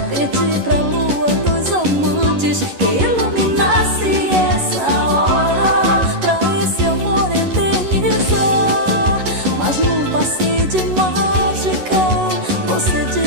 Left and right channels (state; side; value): late; left; 11 ms